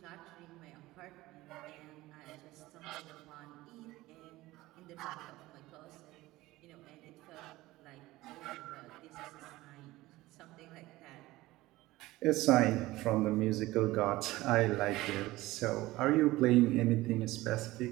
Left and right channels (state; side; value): quieter; left; 18.3 dB